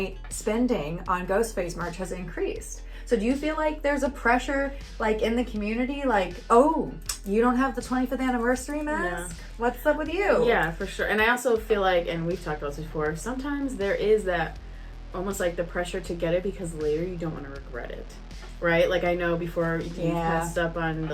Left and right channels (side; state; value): both; identical; correlation 1.00